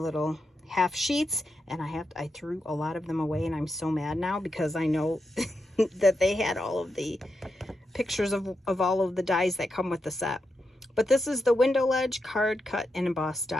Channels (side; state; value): both; normal; correlation 0.86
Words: half sheets, and I threw a lot of them away, and I'm so mad now because I know that they had all of the pictures of all of the dies that come with the set. But this is the window ledge, card, cut, and embossed